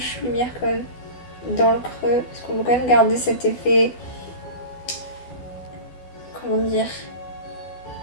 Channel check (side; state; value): right; late; 12 ms